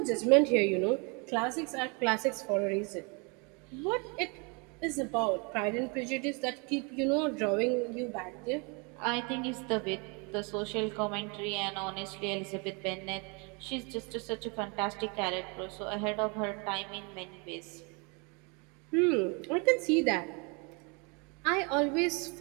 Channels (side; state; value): left; quieter; 32.3 dB